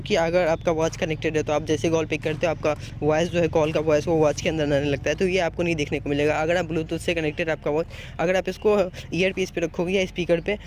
कि अगर आपका वॉच कनेक्टेड है तो आप जैसे कॉल पिक करते हो, आपका वॉइस जो है, कॉल का वॉइस वो वॉच के अंदर आने लगता है। तो ये आपको नहीं देखने को मिलेगा। अगर आप ब्लूटूथ से कनेक्टेड आपका वॉच, अगर आप इसको ईयर पीस पे रखोगे या स्पीकर पे,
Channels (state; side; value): identical; both; correlation 1.00